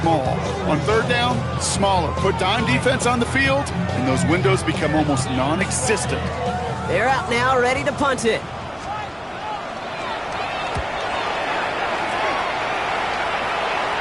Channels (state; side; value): identical; both; correlation 1.00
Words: On 3rd down, smaller. Put dime defense on the field, and those windows become almost non-existent. They're out now, ready to punt it.